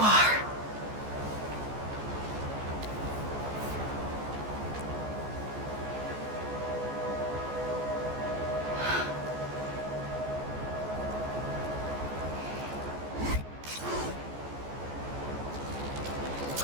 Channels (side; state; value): left; late; 14 ms